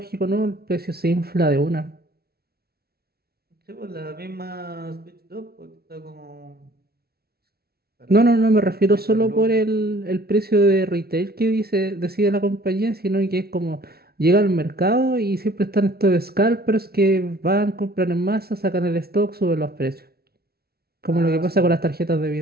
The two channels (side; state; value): left; late; 0.45 ms